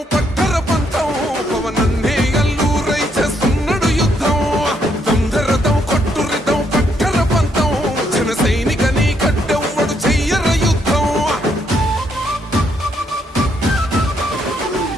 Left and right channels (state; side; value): normal; both; correlation 0.74